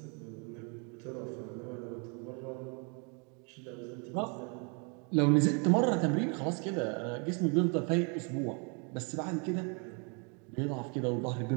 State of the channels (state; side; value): quieter; left; 35.6 dB